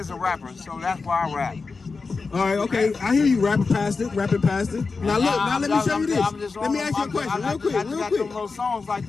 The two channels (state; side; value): quieter; right; 4.4 dB